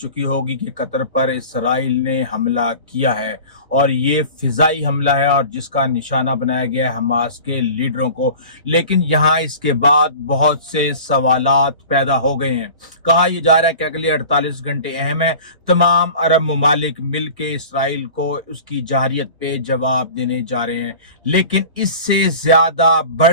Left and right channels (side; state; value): both; inverted; correlation -0.40